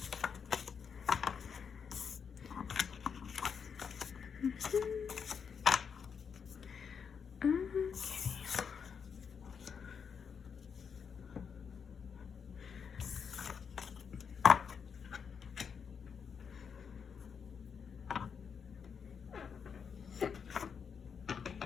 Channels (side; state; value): right; quieter; 6.6 dB